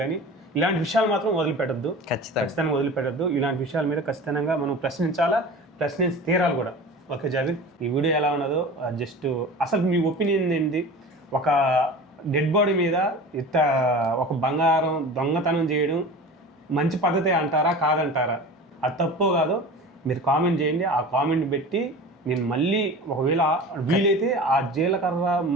కానీ ఇలాంటి విషయాలు మాత్రం వదిలిపెట్టద్దు, ఖచ్చితంగా వదిలిపెట్టద్దు. ఇలాంటి విషయాల మీద ఖచ్చితంగా మనం ప్రశ్నించి తీరాలి కూడా. ఓకే జావేద్, ఈ వీడియో ఎలా ఉన్నదో జస్ట్ అసలు మీ ఒపీనియన్ ఏంటి? ఒక డెడ్ బాడీ మీద ఇంత ఒక బంగారం దొంగతనం చేయడం మంచి పద్ధతి అంటారా కాదంటారా? అది తప్పో కాదో మీరు కామెంట్ చేయండి. ఆ కామెంట్ పెట్టి నేను మళ్ళీ ఒకవేళ వీలైతే ఆ జీలకర్ర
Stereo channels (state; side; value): normal; both; correlation 0.36